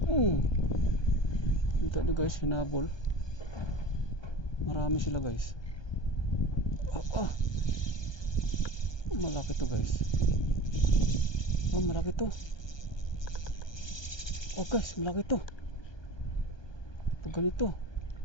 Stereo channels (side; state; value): right; late; 1.2 ms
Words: Kita nyo guys, hinabol. Marami sila guys. Malaki to guys. Malaki to. Guys, malaki to. Pag ganito,